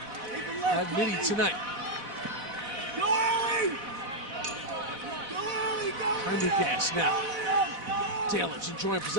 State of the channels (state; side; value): late; left; 4.0 ms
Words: at midi tonight. Prendergast now. Taylor's enjoying